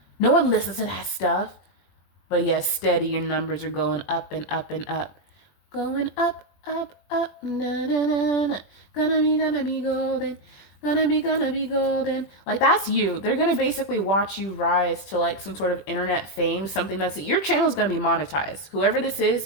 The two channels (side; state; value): right; late; 21 ms